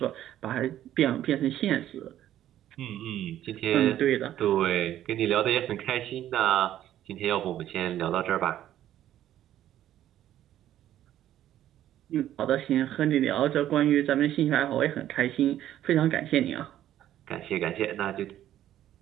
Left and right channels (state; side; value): quieter; left; 12.2 dB